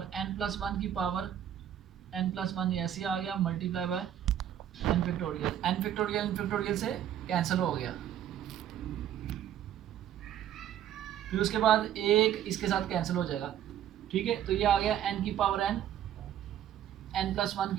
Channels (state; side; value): quieter; left; 10.6 dB